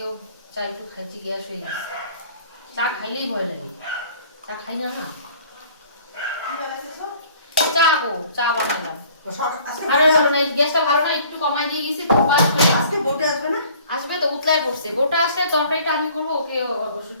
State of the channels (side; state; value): both; inverted; correlation -0.53